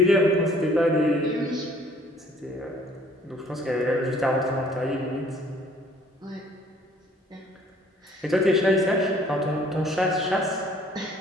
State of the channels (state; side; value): normal; both; correlation 0.57